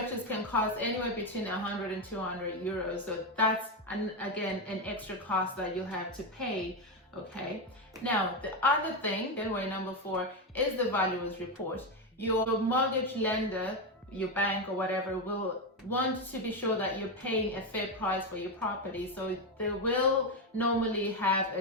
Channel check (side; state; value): both; normal; correlation 0.09